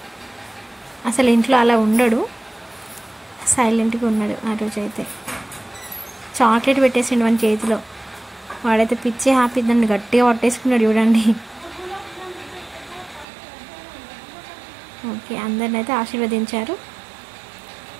అసలు ఇంట్లో అలా ఉండడు, సైలెంట్గా ఉన్నాడు ఆ రోజు అయితే. చాక్లెట్ పెట్టేసిండు మన చేతిలో. వాడైతే పిచ్చి హ్యాపీ, దాన్ని గట్టిగా పట్టేసుకున్నాడు చూడండి. ఓకే, అందరిని అయితే ఆశీర్వదించారు.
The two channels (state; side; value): drops out; left; at 13.2 s